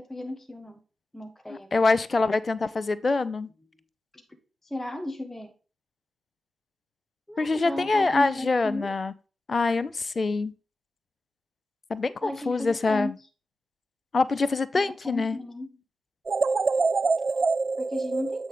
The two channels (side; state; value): both; normal; correlation 0.92